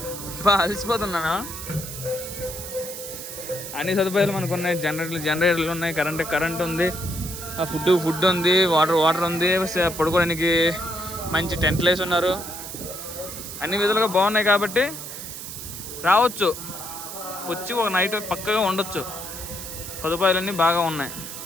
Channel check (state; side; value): noise; right; hiss, 9 dB below the sound